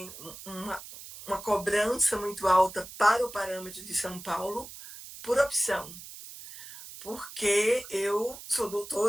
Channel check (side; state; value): right; noise; hiss, 14 dB below the sound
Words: uma cobrança muito alta para o parâmetro de São Paulo por opção. Porque eu sou